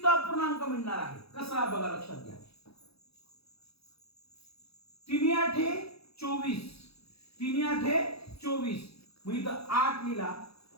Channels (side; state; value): right; late; 0.77 ms